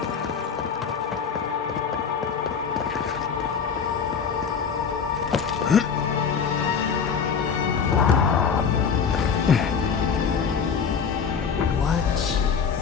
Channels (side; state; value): right; quieter; 6.4 dB